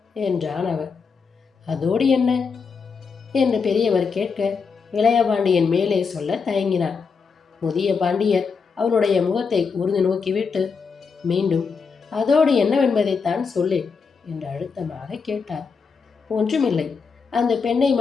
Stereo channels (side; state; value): right; quieter; 5.4 dB